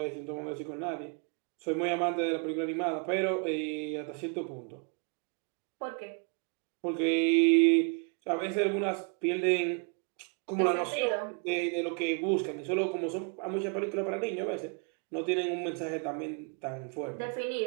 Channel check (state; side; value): quieter; left; 36.8 dB